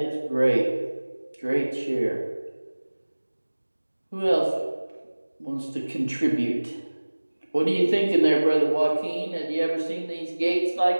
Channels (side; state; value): both; inverted; correlation -1.00